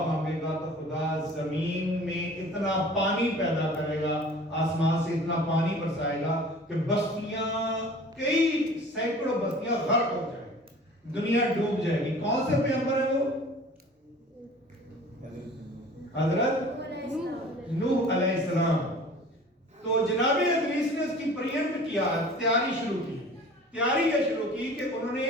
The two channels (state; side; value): normal; both; correlation 0.45